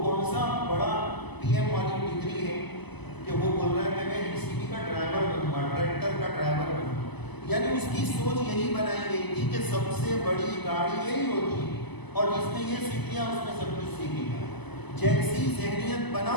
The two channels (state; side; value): late; right; 1.0 ms